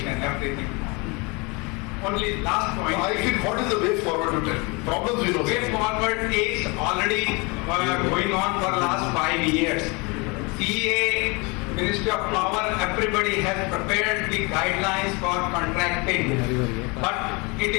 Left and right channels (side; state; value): right; quieter; 28.4 dB